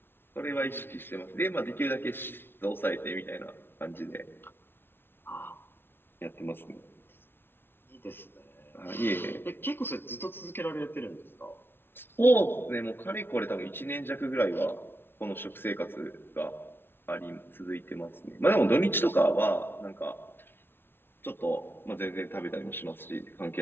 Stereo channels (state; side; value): late; right; 0.11 ms